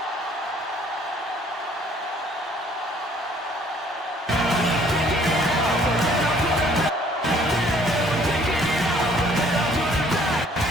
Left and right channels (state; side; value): normal; both; correlation 0.59